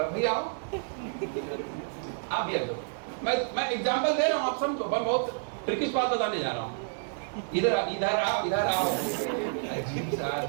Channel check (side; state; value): left; silent; digital silence